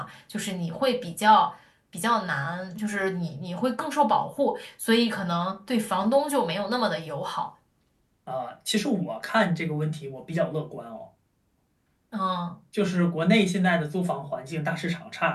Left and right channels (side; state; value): both; identical; correlation 1.00